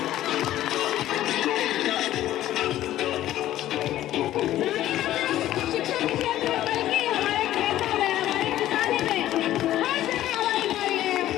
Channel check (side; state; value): right; quieter; 13.6 dB